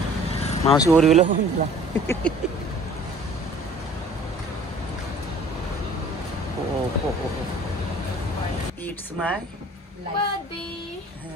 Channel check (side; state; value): both; normal; correlation 0.50